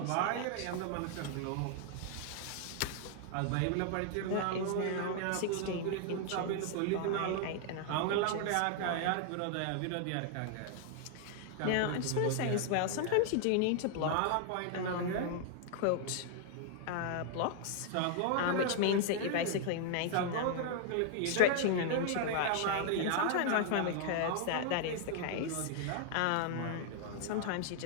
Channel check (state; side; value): different; both; correlation 0.00